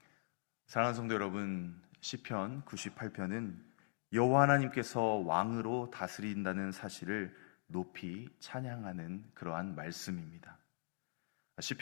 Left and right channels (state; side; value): silent; right; digital silence